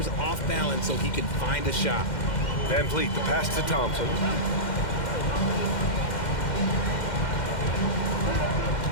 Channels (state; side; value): late; right; 2.1 ms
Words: off balance so he can find a shot. Van Vliet, the pass to Thompson.